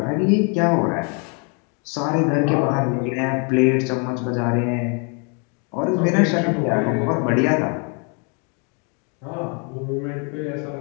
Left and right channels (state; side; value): quieter; right; 37.0 dB